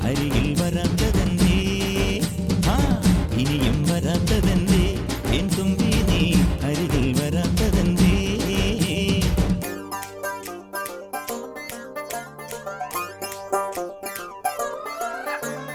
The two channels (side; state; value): both; identical; correlation 1.00